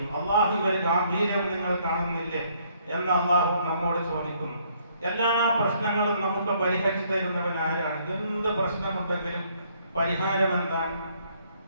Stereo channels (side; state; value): both; inverted; correlation -0.67